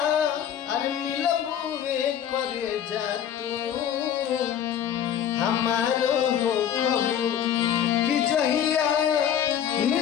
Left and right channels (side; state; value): right; quieter; 9.4 dB